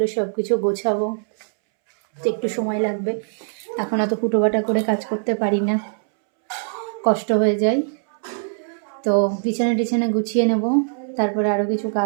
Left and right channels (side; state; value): left; silent; 64 dB below the other